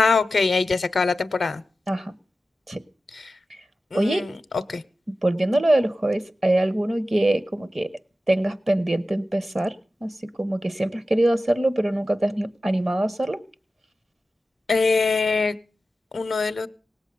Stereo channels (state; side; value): normal; both; correlation 0.94